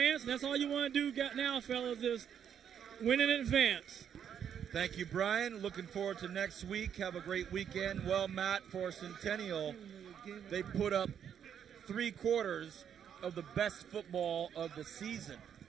And that's all you want to do now, fellas, is win in advance. Thank you, Brian. Looking forward to next week. Have a great weekend. Well, Matt, for Centennial, they put up 3/4 of the best football of the season.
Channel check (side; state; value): left; quieter; 8.6 dB